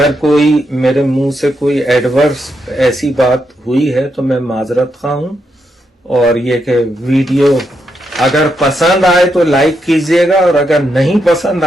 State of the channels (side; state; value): both; normal; correlation 0.82